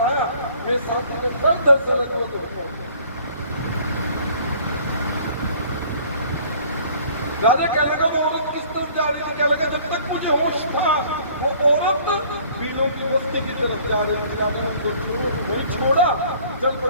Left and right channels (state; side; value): inverted; both; correlation -0.54